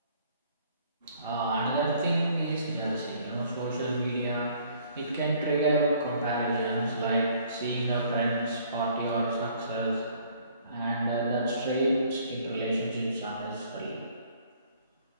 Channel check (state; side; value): inverted; both; correlation -0.60